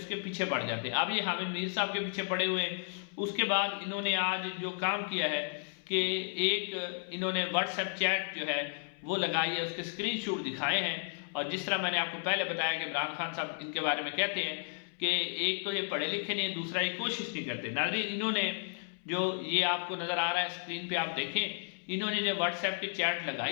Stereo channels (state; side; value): silent; right; 56 dB below the other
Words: کے پیچھے پڑ جاتے ہیں۔ اب یہ حامد میر صاحب کے پیچھے پڑے ہوئے ہیں۔ اس کے بعد انہوں نے آج جو کام کیا ہے کہ ایک انہوں نے واٹس ایپ چیٹ جو ہے وہ لگائی ہے، اس کے اسکرین شاٹ دکھائے ہیں، اور جس طرح میں نے آپ کو پہلے بتایا کہ عمران خان صاحب ان کے بارے میں کہتے ہیں کہ ایک تو یہ پڑھے لکھے نہیں، دوسرا یہ کوشش نہیں کرتے۔ ناظرین انہوں نے جو یہ آپ کو نظر آ رہا ہے اسکرین پہ آپ دیکھیں، انہوں نے جو واٹس ایپ کی چیٹ